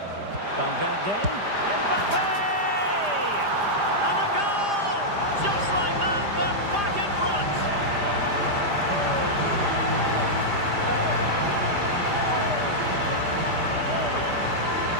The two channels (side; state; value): left; late; 5.0 ms